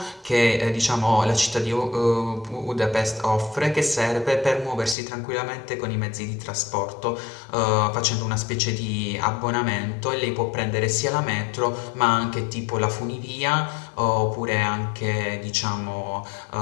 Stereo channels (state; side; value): drops out; right; at 5.0 s